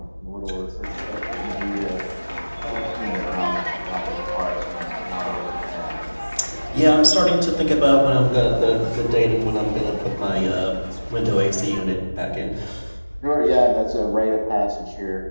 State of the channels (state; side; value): inverted; both; correlation -1.00